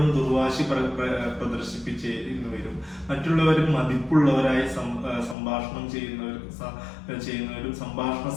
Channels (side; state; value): right; drops out; at 5.4 s